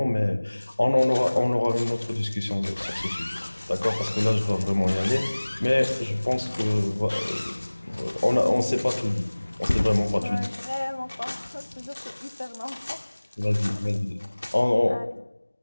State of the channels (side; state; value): both; inverted; correlation -1.00